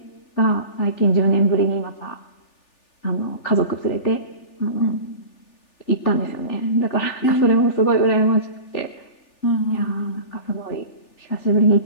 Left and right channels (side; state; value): right; late; 3.4 ms